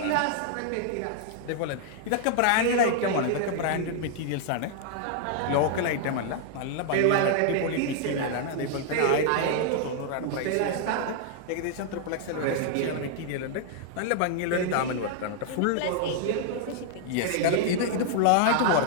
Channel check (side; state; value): both; different; correlation -0.01